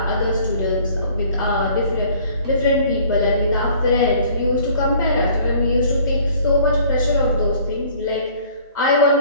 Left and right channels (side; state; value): both; inverted; correlation -0.54